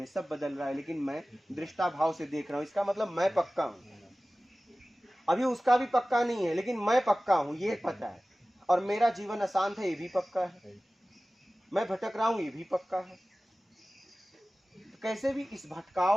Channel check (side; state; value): both; normal; correlation 0.97